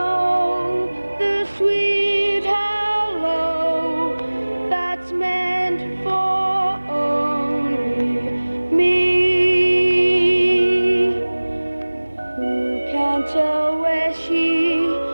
the sweet hello that's meant for only me? Who can tell where she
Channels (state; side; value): inverted; both; correlation -1.00